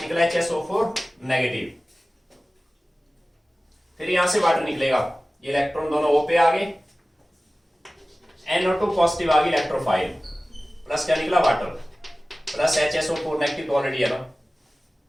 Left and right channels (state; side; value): normal; both; correlation 0.97